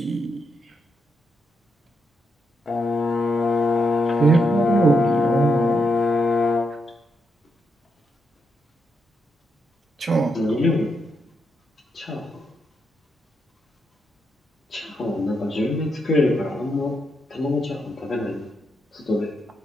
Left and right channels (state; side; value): normal; both; correlation 0.81